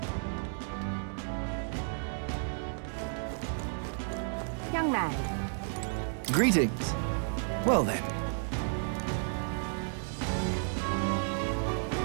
Young man. Greetings. Well then.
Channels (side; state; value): left; silent; 56 dB below the other